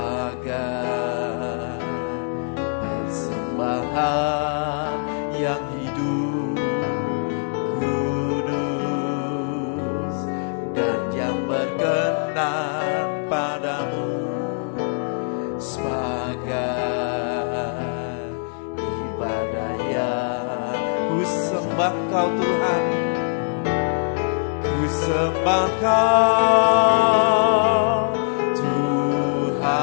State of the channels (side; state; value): right; silent; 63 dB below the other